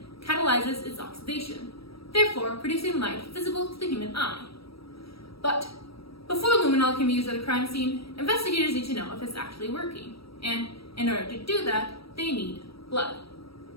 catalyzes its oxidation, therefore producing light visible to the human eye. But before luminol can be used at a crime scene, investigators need to know if it's actually working, and in order to do that, they need blood.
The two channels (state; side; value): late; right; 0.75 ms